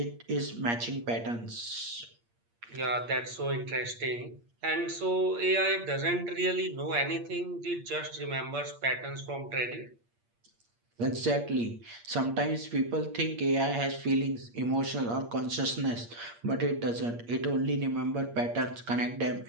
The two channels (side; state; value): left; late; 8.6 ms